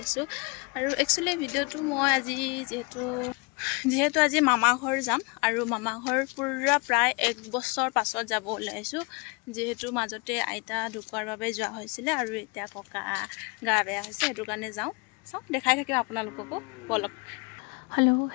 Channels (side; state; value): right; quieter; 30.4 dB